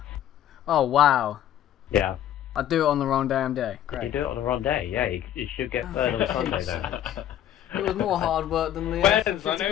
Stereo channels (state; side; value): quieter; right; 11.2 dB